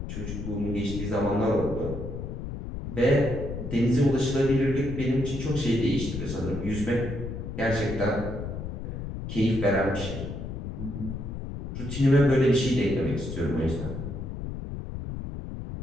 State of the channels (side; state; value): left; noise; rumble, 6 dB below the sound